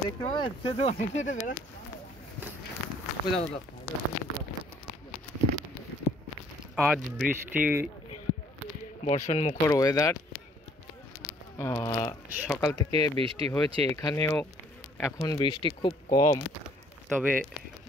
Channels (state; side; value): normal; both; correlation 0.60